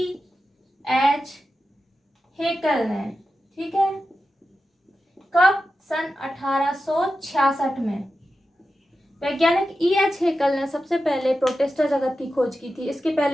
हेकल ने। ठीक है, कब? सन 1866 में वैज्ञानिक E.H. हेकल ने सबसे पहले प्रोटिस्टा जगत की खोज की थी। इसके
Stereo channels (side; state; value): both; normal; correlation 0.91